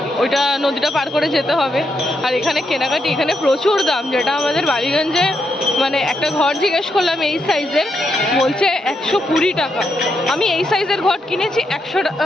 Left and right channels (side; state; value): both; normal; correlation 0.81